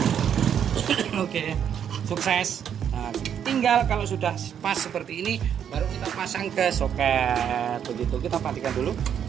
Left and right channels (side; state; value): left; quieter; 8.7 dB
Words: Oke, sukses. Nah, tinggal kalau sudah pas seperti ini, baru kita pasang ke soket. Begitu, kita matikan dulu.